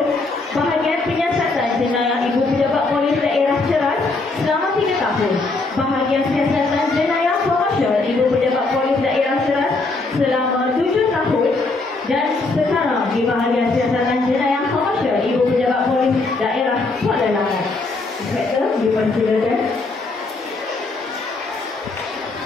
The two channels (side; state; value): right; quieter; 3.5 dB